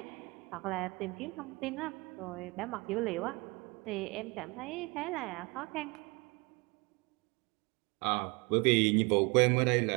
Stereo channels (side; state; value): left; quieter; 26.9 dB